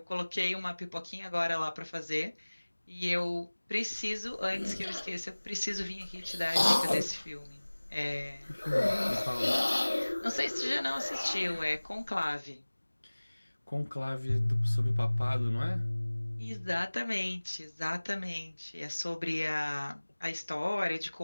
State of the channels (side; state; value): both; inverted; correlation -1.00